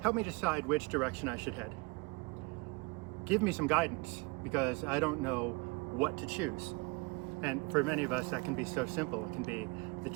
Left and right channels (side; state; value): left; quieter; 27.4 dB